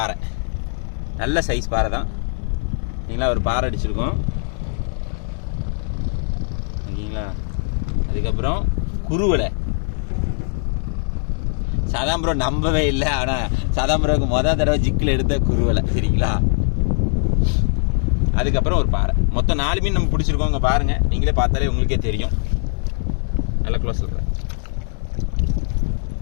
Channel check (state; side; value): silent; right; digital silence